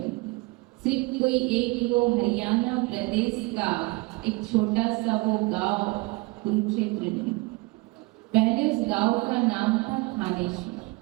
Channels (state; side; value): quieter; left; 25.1 dB